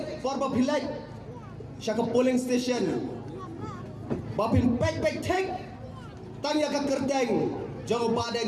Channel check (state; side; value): identical; both; correlation 1.00